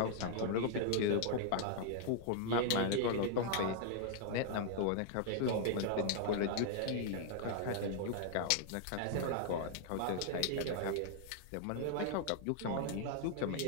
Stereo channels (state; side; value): different; both; correlation -0.01